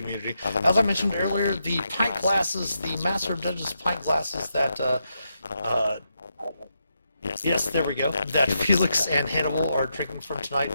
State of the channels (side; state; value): both; inverted; correlation -0.83